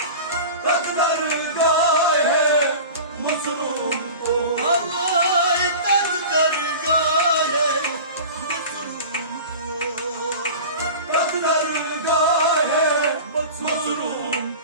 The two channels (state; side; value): inverted; both; correlation -0.35